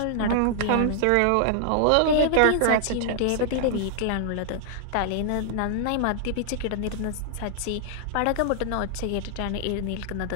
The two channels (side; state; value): both; different; correlation -0.01